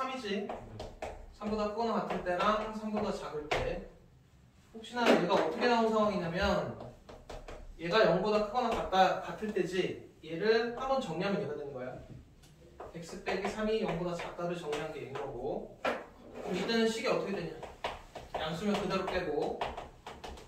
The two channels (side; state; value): both; identical; correlation 1.00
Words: 3보다 크거나 같을 때랑 3보다 작을 때. 혹시나 얘가 어떻게 나온 상황이냐면 얘가 0보다 크거나 같을 때지 얘를 한번 정리하면 얘가 되는 거야. x 빼기 3이 0보다 작다를 정리한 게 얘인 거고 그럼 이때는 식이 어떻게 되냐 양수면 그대로 빼고